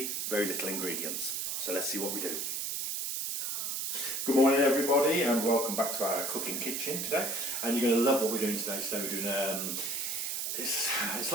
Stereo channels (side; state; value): right; noise; hiss, 2 dB below the sound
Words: very little ingredients. So let's see what we do. Good morning everybody, and welcome back to our cooking kitchen today. And you're going to love what we're doing today. Today we're doing, it's